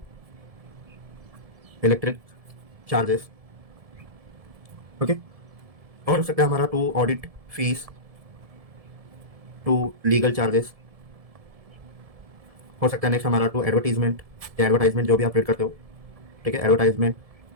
इलेक्ट्रिक चार्जेस। ओके। और हो सकता है हमारा to audit fees, to legal charges. हो सकता है नेक्स्ट हमारा टू एडवर्टीजमेंट, या एडवर्टाइजमेंट जो भी आप रीड करते हो। ठीक है। एडवर्टाइजमेंट।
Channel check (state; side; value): late; left; 1.7 ms